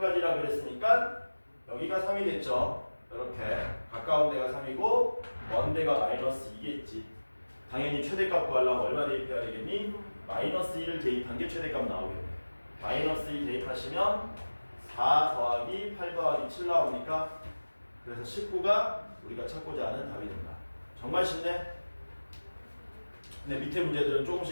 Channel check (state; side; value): inverted; both; correlation -1.00